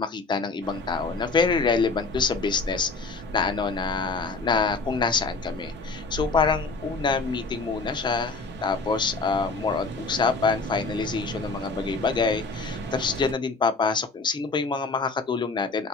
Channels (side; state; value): right; quieter; 4.0 dB